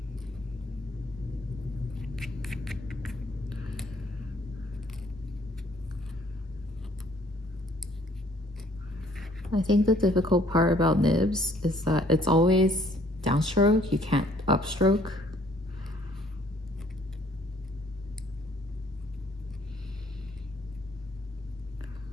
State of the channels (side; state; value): both; normal; correlation 0.61